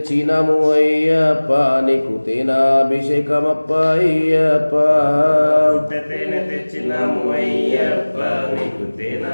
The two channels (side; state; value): both; inverted; correlation -1.00